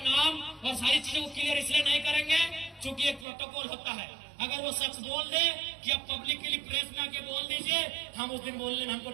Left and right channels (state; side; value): drops out; left; at 3.2 s